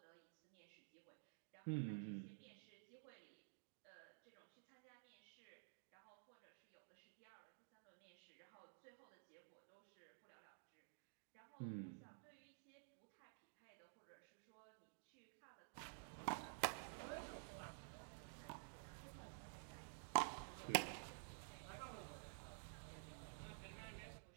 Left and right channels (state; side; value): silent; left; digital silence